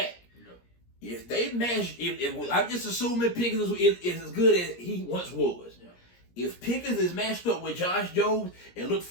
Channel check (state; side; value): late; right; 17 ms